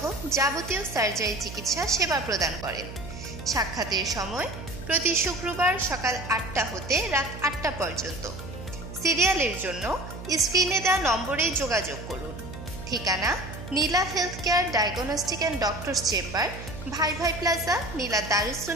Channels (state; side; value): noise; right; hum, 11 dB below the sound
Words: যাবতীয় সার্জারি চিকিৎসা সেবা প্রদান করেন। সাক্ষাতের সময় প্রতি শুক্রবার সকাল 8টা হতে রাত 8টা পর্যন্ত। সিরিয়ালের জন্য স্ক্রিনে দেওয়া নম্বরে যোগাযোগ করুন। ঠিকানা Neela health care diagnostic and doctors chamber, Bhai Bhai plaza, নীলা দারুস